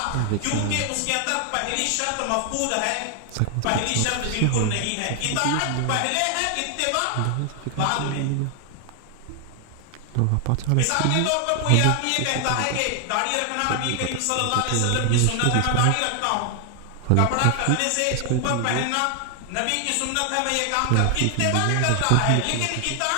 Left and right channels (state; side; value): different; both; correlation 0.00